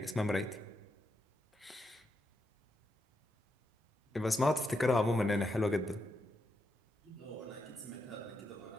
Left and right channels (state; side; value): normal; both; correlation 0.83